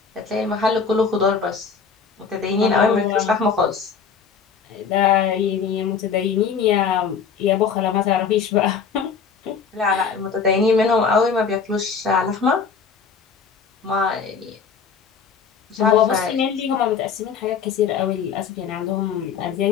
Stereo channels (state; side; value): quieter; right; 6.1 dB